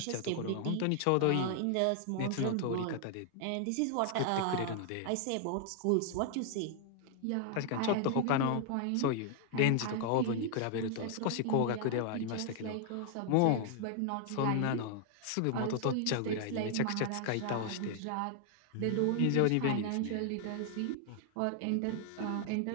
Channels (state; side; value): different; both; correlation 0.00